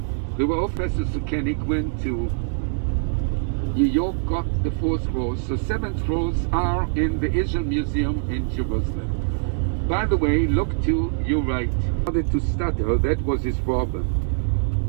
The Professor Sukenik went to New York, got the 4 scrolls, so 7 scrolls are in the Israel Museum in Jerusalem. By the way, look to your right. He started to stutter, that was his problem.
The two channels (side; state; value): left; silent; digital silence